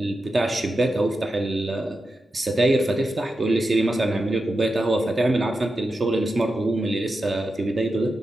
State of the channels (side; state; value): both; normal; correlation 0.89